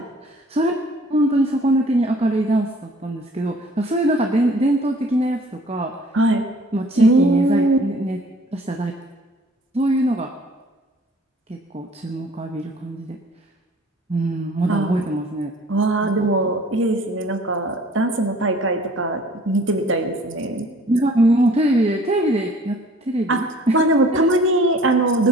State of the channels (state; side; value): normal; both; correlation 0.52